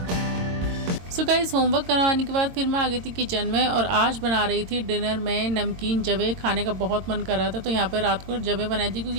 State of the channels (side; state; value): left; late; 22 ms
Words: सो गाइस, होमवर्क करवाने के बाद फिर मैं आ गई थी किचन में और आज बना रही थी डिनर में नमकीन जवे। खाने का बहुत मन कर रहा था तो यहाँ पर रात को जवे बनाई थी